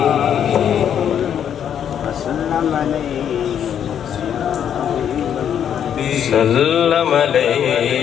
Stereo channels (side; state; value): right; quieter; 9.0 dB